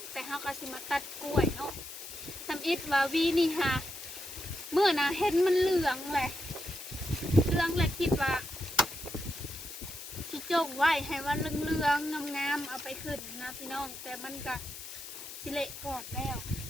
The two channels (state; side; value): noise; left; hiss, 11 dB below the sound